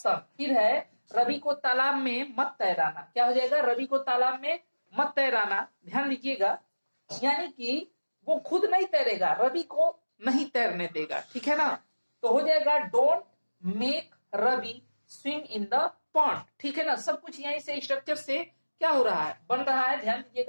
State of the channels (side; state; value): both; inverted; correlation -1.00